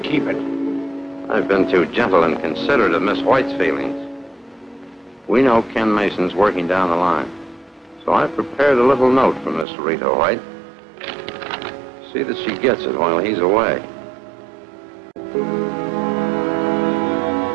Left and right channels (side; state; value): left; drops out; at 9.7 s